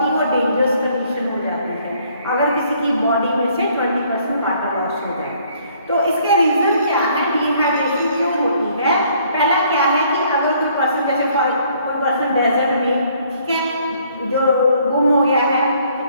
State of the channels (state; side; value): inverted; both; correlation -0.63